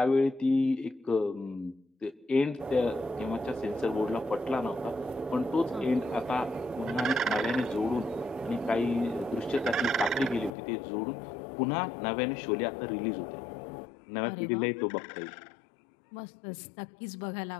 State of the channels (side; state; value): right; drops out; at 10.5 s